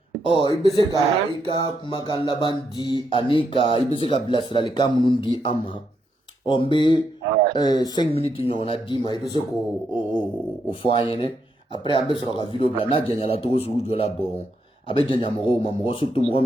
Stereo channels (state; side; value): normal; both; correlation 0.79